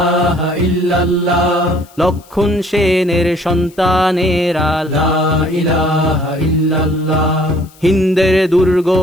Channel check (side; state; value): left; noise; hiss, 27 dB below the sound